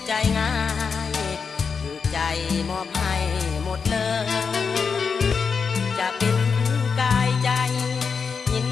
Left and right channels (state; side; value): quieter; right; 5.6 dB